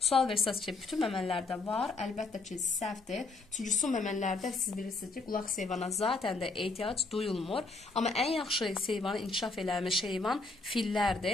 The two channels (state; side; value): quieter; right; 3.6 dB